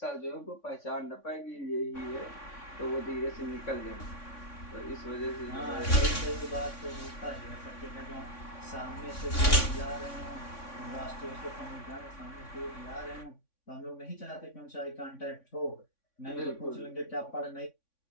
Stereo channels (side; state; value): right; late; 3.5 ms